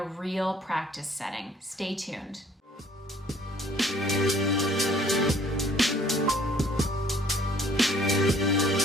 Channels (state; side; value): normal; both; correlation 0.58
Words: real practice setting. Stay tuned.